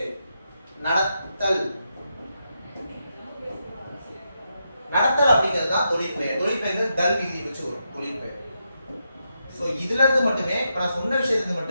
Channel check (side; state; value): both; inverted; correlation -0.84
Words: நடத்தல், நடத்தல் அப்படிங்கிறது தான் தொழிற்பெயர். தொழிற்பெயர் தல் விதி வச்சு வரும் தொழிற்பெயர். ஸோ இதுல இருந்து மட்டுமே, இப்போ நான் சொன்ன விஷயத்துக்கு